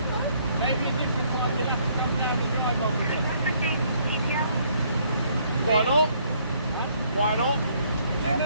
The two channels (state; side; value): inverted; both; correlation -0.66